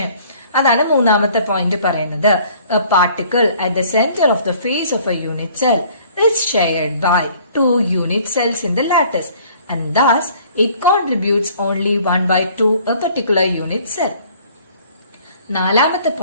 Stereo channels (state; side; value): inverted; both; correlation -0.55